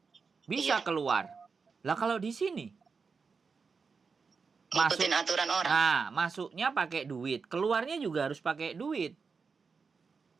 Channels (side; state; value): left; quieter; 5.1 dB